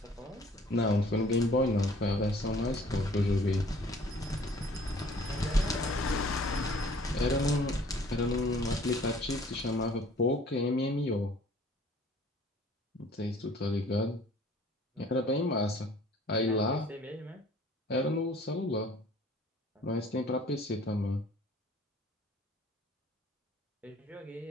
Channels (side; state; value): both; normal; correlation 0.53